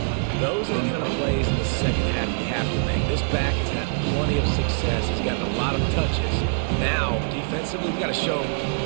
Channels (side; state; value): left; silent; digital silence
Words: Those are the kind of plays in the second half you have to make. This back has had plenty of success. He's gotten a lot of touches. Now, defensively, we've got to show